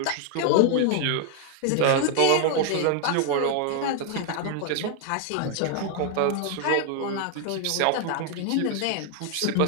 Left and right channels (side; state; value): both; different; correlation 0.00